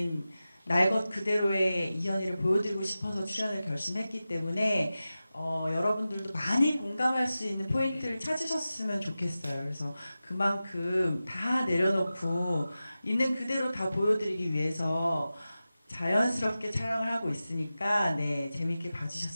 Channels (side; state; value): both; inverted; correlation -0.94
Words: 날 것 그대로의 이현희를 보여드리고 싶어서 출연을 결심했기 때문에 여러분들도 많이 공감할 수 있는 포인트를 찾으셨으면 좋겠어요. 그래서 그만큼 다 내려놓고 있는 그대로 다 보여드리기 위해서 자연스럽게 촬영을 하고 있으니까 네, 재밌게